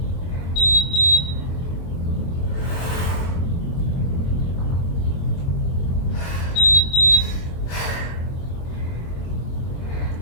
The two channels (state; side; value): late; right; 23 ms